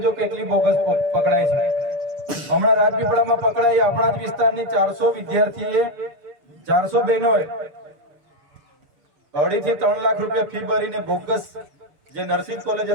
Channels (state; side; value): late; left; 6.7 ms